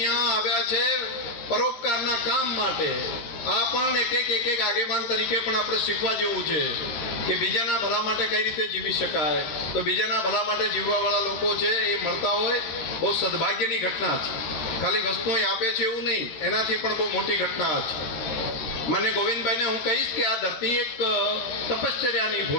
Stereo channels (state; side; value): late; right; 13 ms